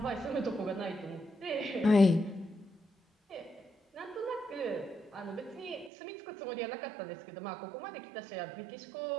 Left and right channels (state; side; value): drops out; left; at 5.9 s